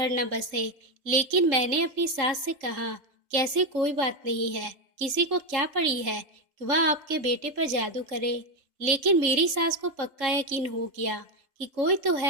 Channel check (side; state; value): left; late; 3.6 ms